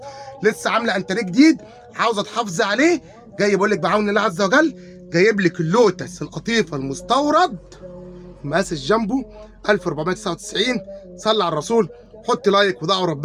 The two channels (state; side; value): identical; both; correlation 1.00